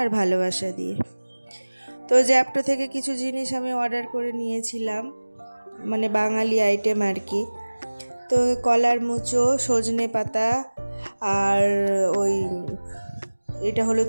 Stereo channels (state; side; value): inverted; both; correlation -1.00